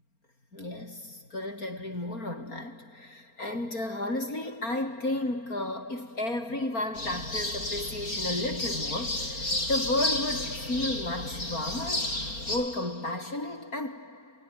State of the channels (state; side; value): late; right; 4.3 ms